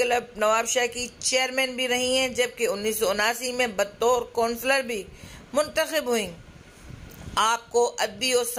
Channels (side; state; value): both; identical; correlation 1.00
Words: नवाबशाह की चेयरमैन भी रही हैं, जबकि 1979 में बतौर कौंसलर भी मुंतखब हुई। आपको अदबी और